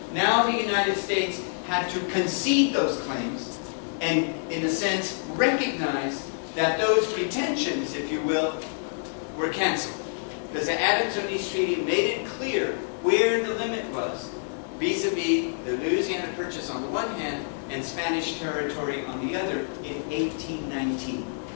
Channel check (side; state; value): right; silent; digital silence